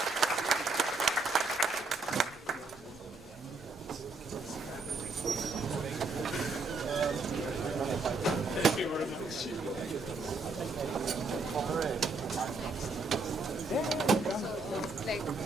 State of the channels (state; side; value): quieter; left; 3.7 dB